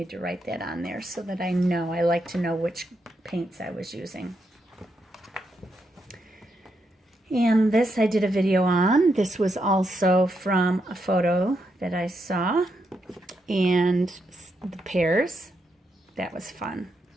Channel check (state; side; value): normal; both; correlation 0.82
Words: to write that on there so that I know. I like to know which paints I was using. And this I did a video on. This was also from a photo that I saw. And the pears, that was fun.